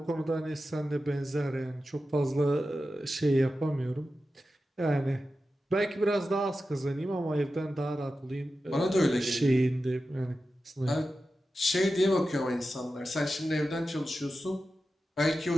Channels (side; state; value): both; normal; correlation 0.92